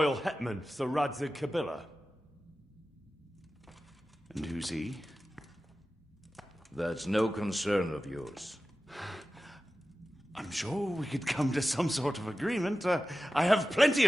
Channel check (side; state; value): both; normal; correlation 0.94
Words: hetman, Sir Radzig Kobyla. And who's he? That's no concern of yours. I'm sure we could come to some sort of agreement. I have plenty